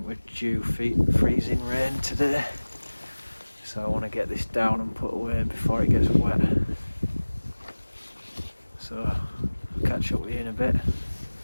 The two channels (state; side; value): inverted; both; correlation -1.00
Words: we're due freezing rain today, so I want to get this down and put away before it gets wet. So I'll catch up with you in a bit.